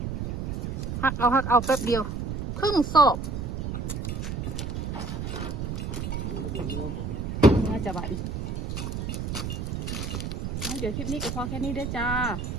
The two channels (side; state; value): right; noise; rumble, 3 dB below the sound